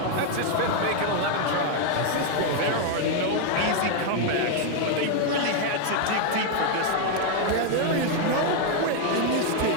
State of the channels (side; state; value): both; different; correlation 0.01